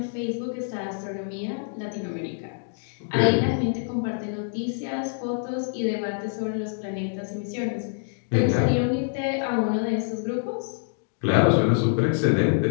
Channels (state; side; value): silent; right; digital silence